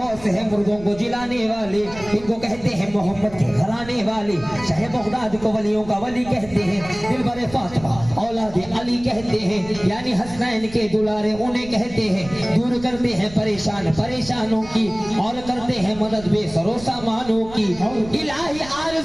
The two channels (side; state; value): right; noise; rumble, 17 dB below the sound